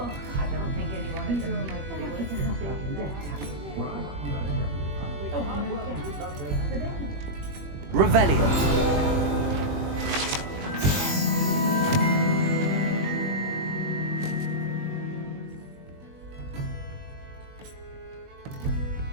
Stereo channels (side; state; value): left; late; 21 ms